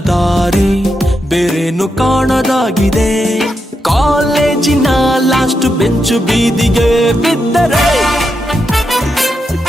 ದಾರಿ, ಬೇರೇನು ಕಾಣದಾಗಿದೆ. ಕಾಲೇಜಿನ ಲಾಸ್ಟ್ ಬೆಂಚು ಬೀದಿಗೆ ಬಿದ್ದರೆ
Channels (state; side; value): normal; both; correlation 0.85